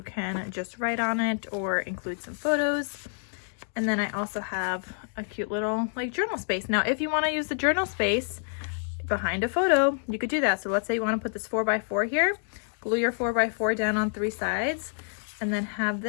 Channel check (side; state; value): right; silent; digital silence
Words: can just write on it or include some photos. And then I also have a cute little like journal space. Now, if you want to use the journal space, behind a photo, you could do that. So let's say you want to put this 4x4 here, glue your 4x4 down on 3 sides, and then have